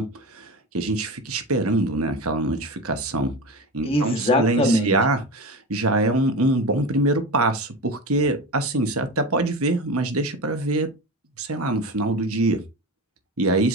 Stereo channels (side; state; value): both; normal; correlation 0.25